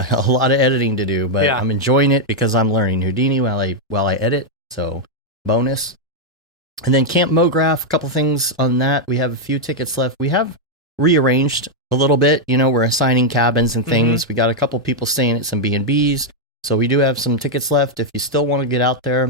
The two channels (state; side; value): normal; both; correlation -0.01